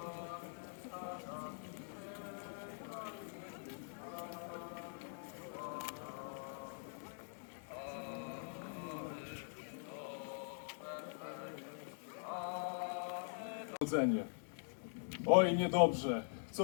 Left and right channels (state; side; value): silent; right; digital silence